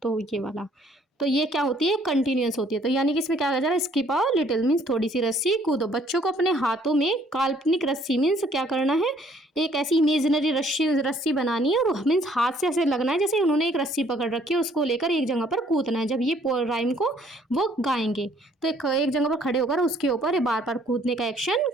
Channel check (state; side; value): normal; both; correlation 0.62